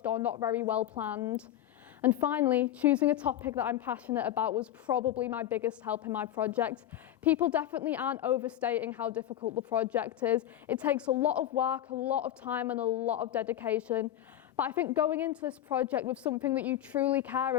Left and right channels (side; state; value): right; quieter; 12.0 dB